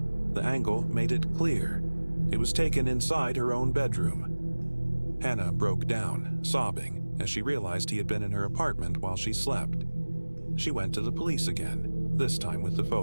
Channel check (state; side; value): inverted; both; correlation -1.00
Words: The angle made it clear. It was taken inside her own bedroom. Hannah broke down, sobbing, as she realized he had been in her apartment while she slept. She went to the police again, this time with the